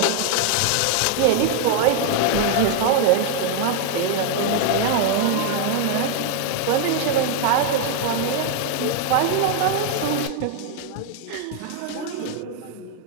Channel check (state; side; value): different; both; correlation 0.00